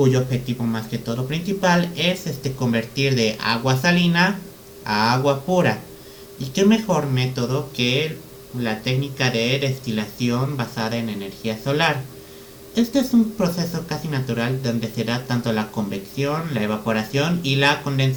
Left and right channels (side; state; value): both; identical; correlation 1.00